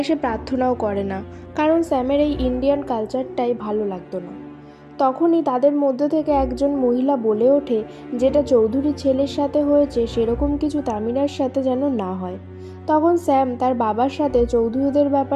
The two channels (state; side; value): identical; both; correlation 1.00